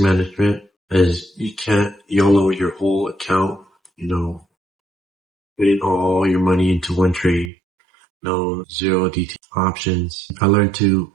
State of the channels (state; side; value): drops out; left; at 7.5 s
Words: is you can't YOLO your whole account, putting all your money into one trade. No zero DT options. I learned to